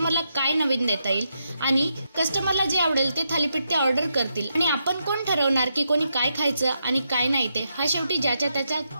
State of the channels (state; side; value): inverted; both; correlation -0.82